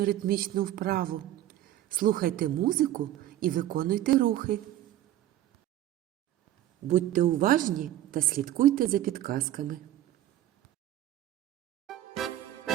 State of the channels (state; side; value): quieter; left; 13.4 dB